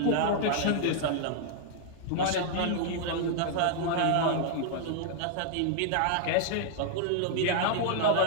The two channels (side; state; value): both; different; correlation -0.01